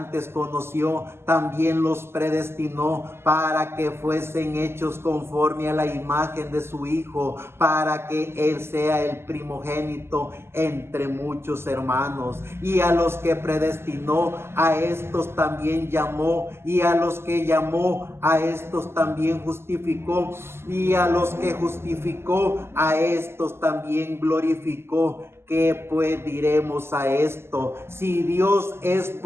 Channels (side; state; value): left; late; 0.12 ms